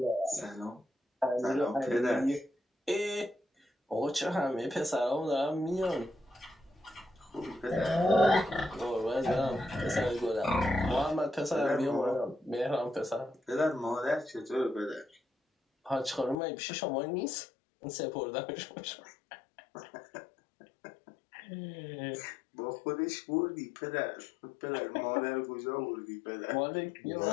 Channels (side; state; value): right; drops out; at 16.4 s